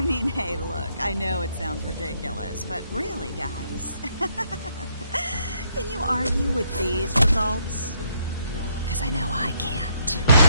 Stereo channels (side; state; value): both; inverted; correlation -0.72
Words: mean, hey, look, I know it sounds ridiculous, but really, guys, can you argue with these results? Because I know I can't.